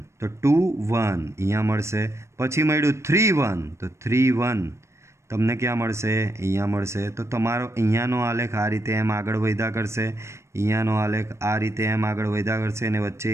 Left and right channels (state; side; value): late; left; 0.13 ms